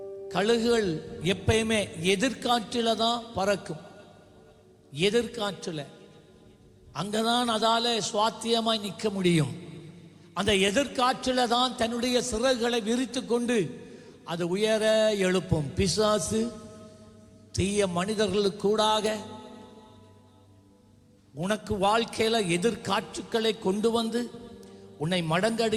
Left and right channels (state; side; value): identical; both; correlation 1.00